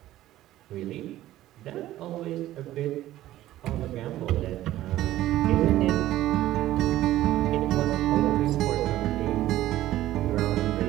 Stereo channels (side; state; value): left; quieter; 14.5 dB